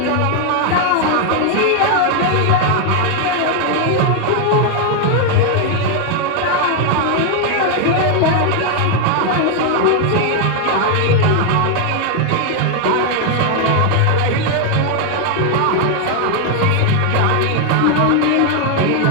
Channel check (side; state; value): both; different; correlation 0.00